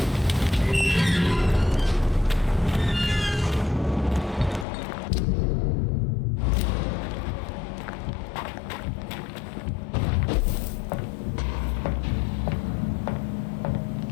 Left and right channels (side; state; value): right; drops out; at 4.7 s